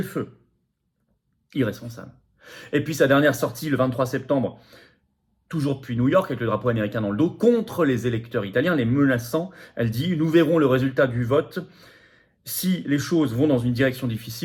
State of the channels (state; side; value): identical; both; correlation 1.00